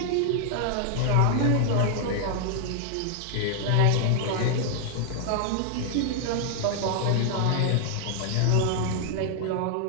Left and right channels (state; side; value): different; both; correlation 0.00